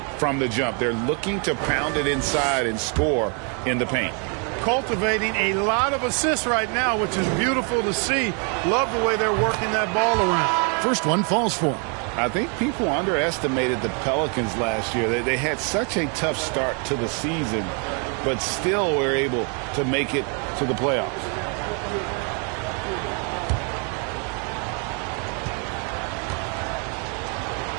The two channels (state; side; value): quieter; left; 38.0 dB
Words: from the jump. They're looking to pound it inside and score in the paint. Cultivating a lot of assists right now, which is beautiful to see. Love the way they're working that ball around. First one falls for them. I think people underestimated the Pelicans last year. They had such a tough start to the season, but still were able to make it to the playoffs.